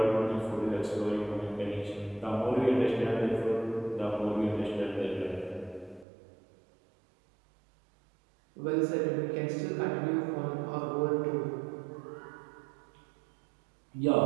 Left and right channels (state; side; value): drops out; left; at 6.1 s